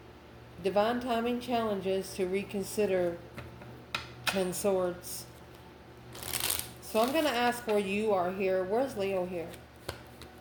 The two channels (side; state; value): both; identical; correlation 1.00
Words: Divine timing challenges to reconsider 10 Swords. So I'm going to ask where you are here. Where's Leo here?